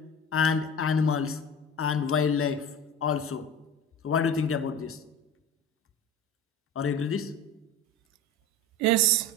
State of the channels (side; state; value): both; normal; correlation 0.34